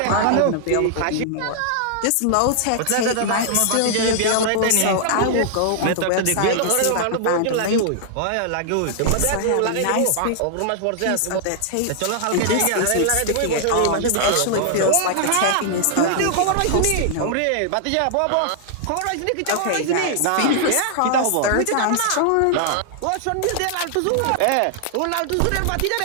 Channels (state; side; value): different; both; correlation -0.01